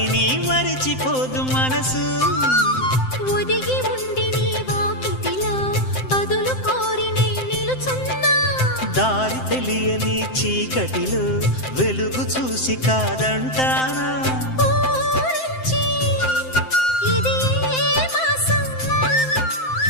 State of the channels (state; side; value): late; right; 7.7 ms